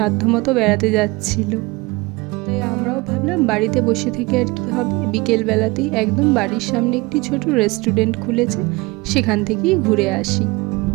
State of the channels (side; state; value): left; quieter; 24.0 dB